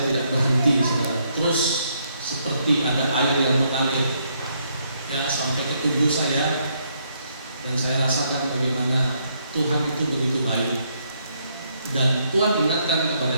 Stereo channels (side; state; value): both; inverted; correlation -0.73